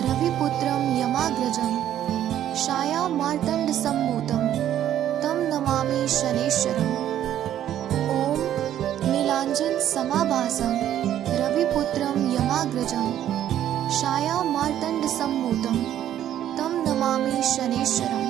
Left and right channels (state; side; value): quieter; left; 11.3 dB